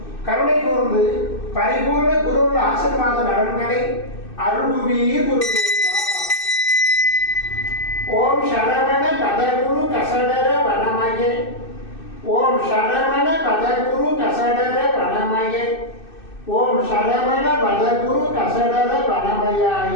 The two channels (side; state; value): right; late; 2.6 ms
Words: கருணை கூர்ந்து பரிபூர்ண குரு ஆசீர்வாத நலன்களை அருள்வீர் குருவே. ஓம் சரவண பதகுரு கசடர வனமயே, ஓம் சரவண பதகுரு கசடர வனமயே, ஓம் சரவண பதகுரு கசடர வனமயாய